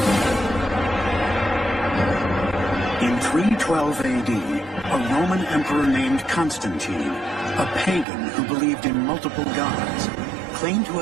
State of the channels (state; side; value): drops out; left; at 8.1 s